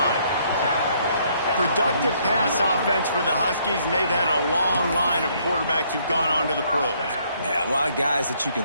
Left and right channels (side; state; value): both; inverted; correlation -0.67